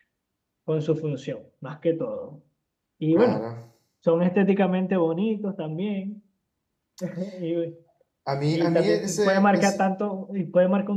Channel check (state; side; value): identical; both; correlation 1.00